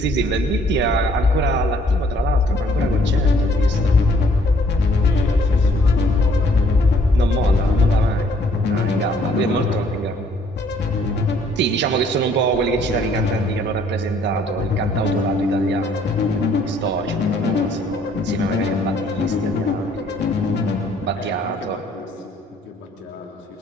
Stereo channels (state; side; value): normal; both; correlation 0.62